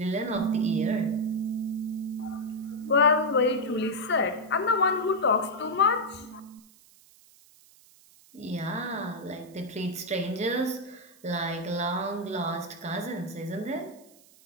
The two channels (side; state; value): right; noise; hiss, 26 dB below the sound